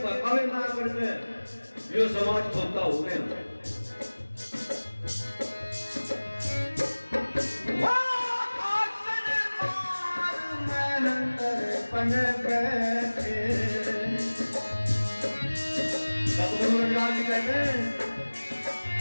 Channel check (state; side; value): inverted; both; correlation -1.00